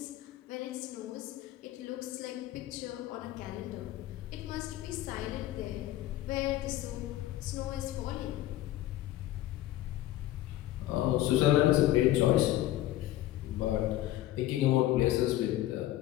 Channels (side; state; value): right; quieter; 14.6 dB